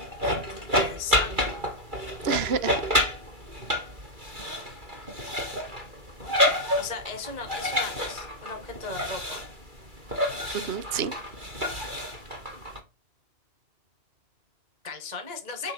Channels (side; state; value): left; late; 2.3 ms